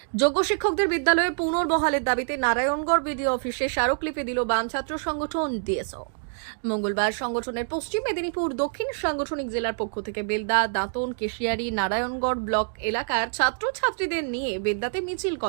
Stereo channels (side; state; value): left; silent; digital silence